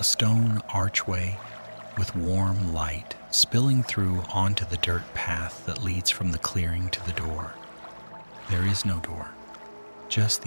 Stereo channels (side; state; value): both; inverted; correlation -1.00